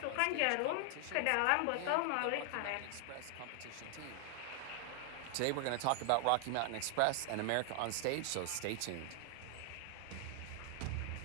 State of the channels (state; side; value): different; both; correlation 0.00